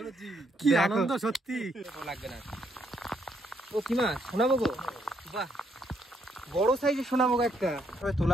কি আনন্দ সত্যি। লাগবে না। ও কি মাছ? শোনাবো গো, বাহ বড় সাইজের শোনাবো একটা। তবে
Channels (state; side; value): normal; both; correlation 0.73